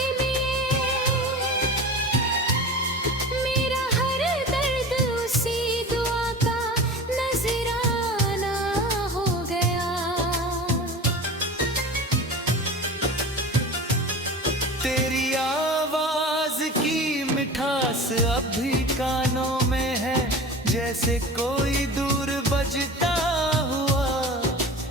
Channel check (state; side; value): normal; both; correlation 0.34